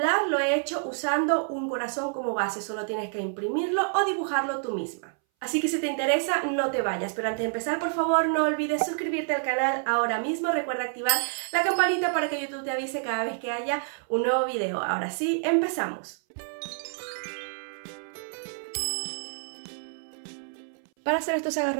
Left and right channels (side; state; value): left; silent; 59 dB below the other